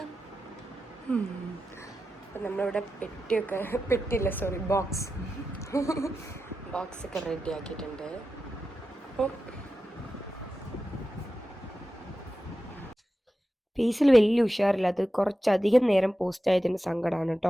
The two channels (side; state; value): both; normal; correlation 0.92